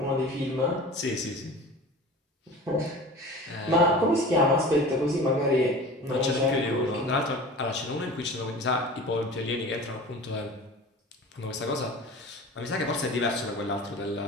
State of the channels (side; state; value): both; normal; correlation 0.38